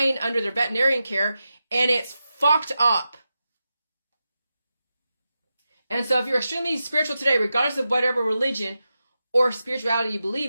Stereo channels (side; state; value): both; inverted; correlation -0.90